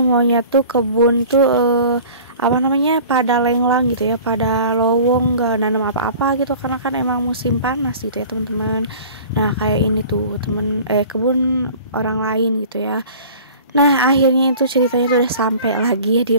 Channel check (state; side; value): inverted; both; correlation -0.44